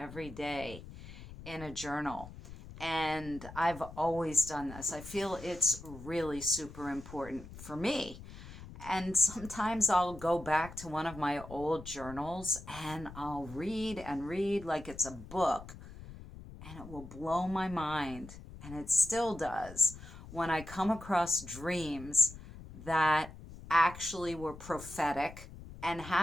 day in a journal, and I've always done this. I feel it's really super important for me. And sometimes I'll go back to one of my old journals and I'll read and read like it's a book, and it will blow my mind, and it still does, when I come across dreams that actually were prophetic and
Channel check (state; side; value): noise; left; rumble, 15 dB below the sound